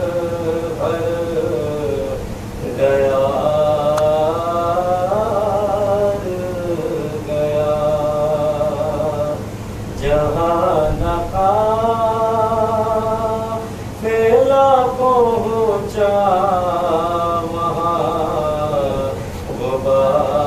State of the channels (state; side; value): identical; both; correlation 1.00